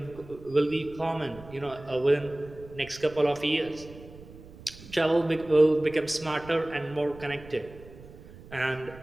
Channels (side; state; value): right; noise; rumble, 18 dB below the sound